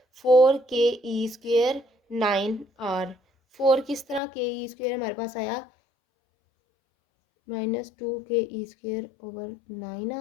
फोर के E square nine are. Four किस तरह के ई स्क्वेयर हमारे पास आया, minus two K E square over nine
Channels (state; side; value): drops out; right; at 4.2 s